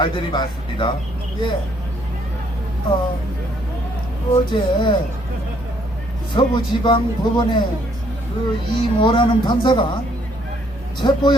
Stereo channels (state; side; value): normal; both; correlation 0.67